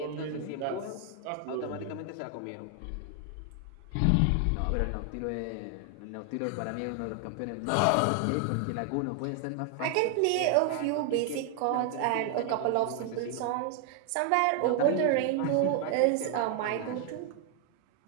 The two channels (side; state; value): both; different; correlation 0.00